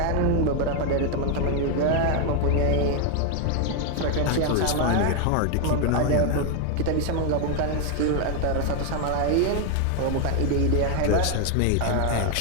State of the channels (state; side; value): different; both; correlation 0.00